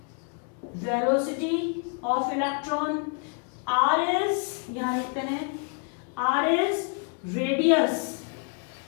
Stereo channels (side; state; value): right; quieter; 39.4 dB